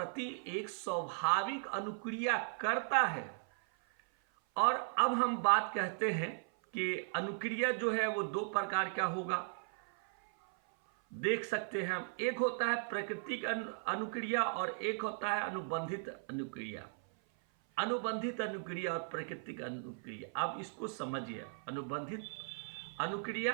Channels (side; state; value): left; silent; 53 dB below the other